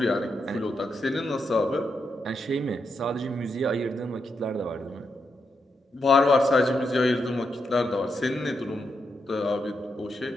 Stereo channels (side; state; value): both; normal; correlation 0.83